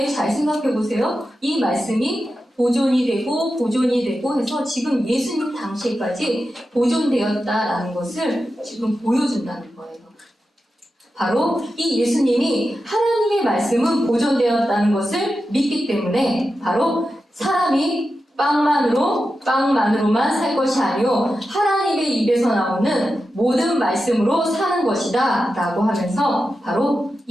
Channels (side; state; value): both; normal; correlation 0.91